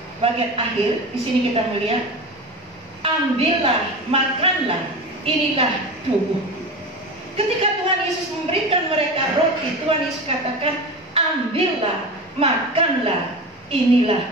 bagian akhir. Di sini kita melihat, ambillah, makanlah, inilah tubuh. Ketika Tuhan Yesus memberikan mereka roti, Tuhan Yesus katakan, ambillah, makanlah,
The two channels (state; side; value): normal; both; correlation 0.28